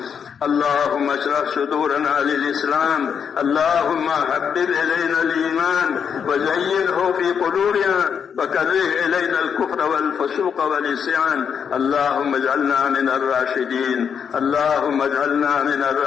اللهم اشرح صدورنا للإسلام. اللهم حبب إلينا الإيمان وزينه في قلوبنا وكره إلينا الكفر والفسوق والعصيان. اللهم اجعلنا من الراشدين. اللهم اجعلنا من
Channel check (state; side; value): quieter; right; 7.2 dB